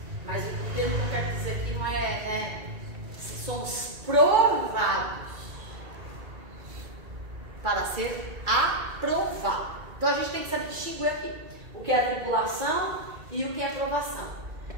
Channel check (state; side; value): late; left; 2.3 ms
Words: mas o termo que eu quero dizer aqui não somos provados para ser aprovado. Então a gente tem que saber distinguir aqui o que é tribulação e o que é provação.